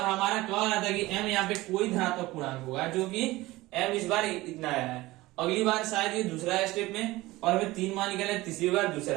हमारा क्या रहा था कि m यहाँ पे कोई धनात्मक पूर्णांक होगा, जो कि m इस बार इतना आया है, अगली बार शायद ये दूसरा है स्टेप में, और हमें 3 मान निकालना है, तीसरी बार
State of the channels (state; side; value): quieter; left; 19.1 dB